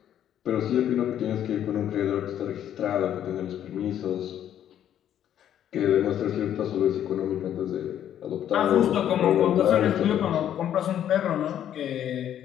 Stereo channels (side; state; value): right; quieter; 10.5 dB